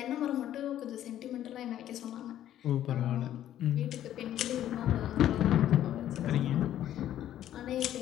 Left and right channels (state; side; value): quieter; right; 11.8 dB